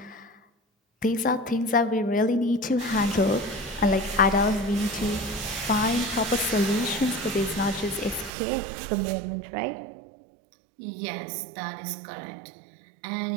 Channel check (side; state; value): left; drops out; at 8.3 s